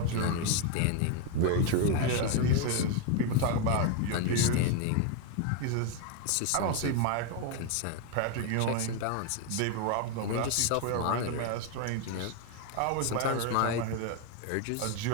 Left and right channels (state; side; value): different; both; correlation 0.01